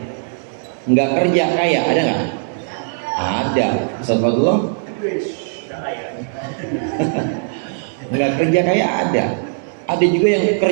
nggak kerja kaya, ada nggak? Ada. Ustaz Fadlullah nggak kerja kaya ada juga yang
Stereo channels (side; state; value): left; silent; 67 dB below the other